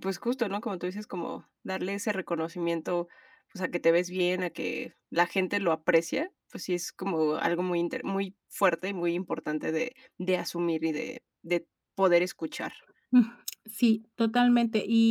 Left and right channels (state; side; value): identical; both; correlation 1.00